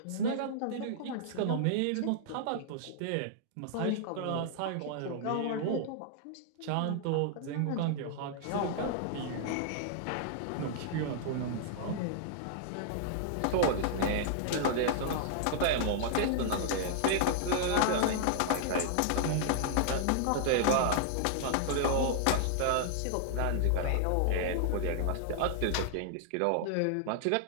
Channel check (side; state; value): both; different; correlation -0.01